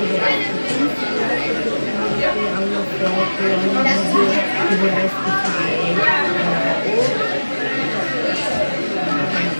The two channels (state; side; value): inverted; both; correlation -1.00